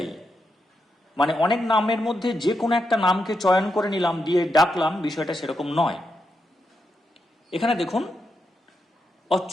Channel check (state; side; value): normal; both; correlation 0.84